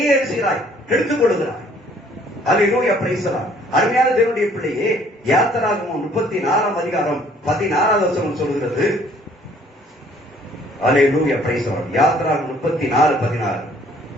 எழுதுகிறாய், எடுத்துக் கொள்கிறாய். அல்லேலூயா, பிரைஸ் தி லார்ட். அருமையான தேவனுடைய பிள்ளையே, யாத்திராகமம் 34:16 சொல்லுகிறது. அல்லேலூயா, பிரைஸ் தி லார்ட். யாத்திராகமம் 34:16.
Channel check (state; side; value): normal; both; correlation 0.59